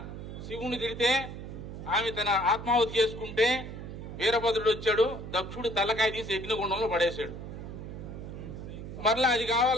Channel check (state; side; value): noise; right; hum, 9 dB below the sound